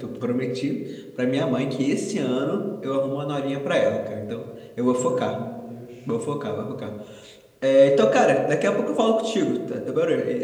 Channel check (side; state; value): both; identical; correlation 1.00